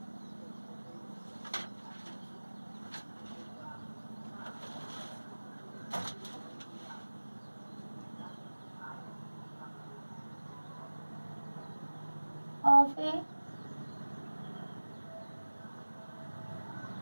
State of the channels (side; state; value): both; inverted; correlation -1.00